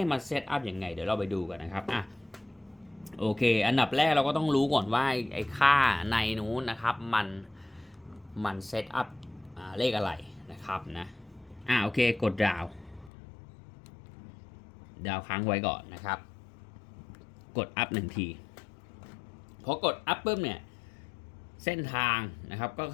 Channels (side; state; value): right; drops out; at 13.1 s